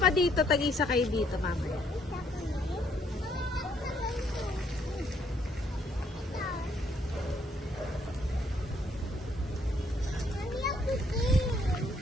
dito, tag-isa kayo dito, mamaya.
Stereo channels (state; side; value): normal; both; correlation 0.68